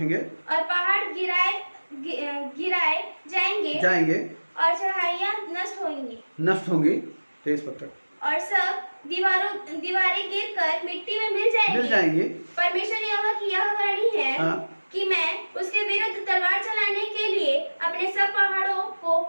और पहाड़ गिराए जाएंगे और चढ़ाइयाँ नष्ट होंगी 23 पद तक, और सब दीवारें गिरकर मिट्टी में मिल जाएंगे। परमेश्वर यहोवा की यह वाणी है। हाँ? कि मैं उसके विरुद्ध तलवार चलाने के लिए अपने सब पहाड़ों को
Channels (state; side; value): inverted; both; correlation -1.00